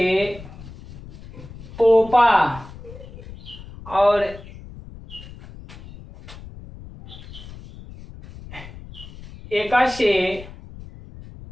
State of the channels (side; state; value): left; noise; rumble, 16 dB below the sound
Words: पोपा और एका से